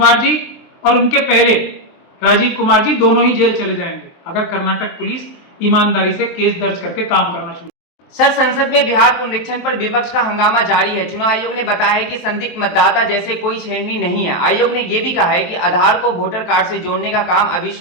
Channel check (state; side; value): late; right; 23 ms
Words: जी और उनके पहले राजीव कुमार जी दोनों ही जेल चले जाएंगे, अगर कर्नाटक पुलिस ईमानदारी से केस दर्ज करके काम करना शुरू। सर, संसद में बिहार पुनरीक्षण पर विपक्ष का हंगामा जारी है। चुनाव आयोग ने बताया है कि संदिग्ध मतदाता जैसे कोई छेड़नी नहीं है। आयोग ने यह भी कहा है कि आधार को वोटर कार्ड से जोड़ने का काम अभी